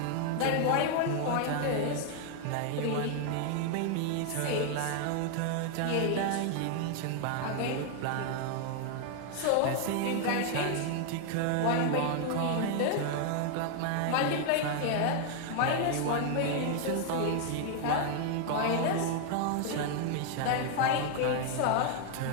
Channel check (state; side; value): different; both; correlation 0.00